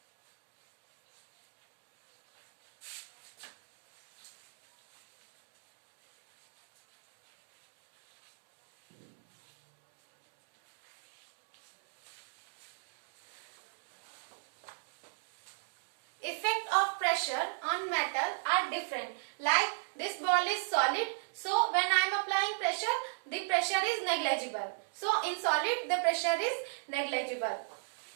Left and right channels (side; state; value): left; silent; digital silence